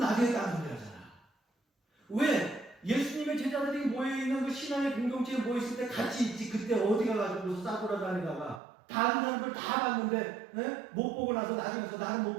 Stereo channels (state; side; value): drops out; left; at 8.6 s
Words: 따라오잖아. 왜? 예수님의 제자들이 모여있는 그 신앙의 공동체에 모였을 때 같이 있지. 그때 어디 가가지고 싸돌아다니다가 다른 사람들 다 봤는데 못 보고 나서 나중에서 나는 못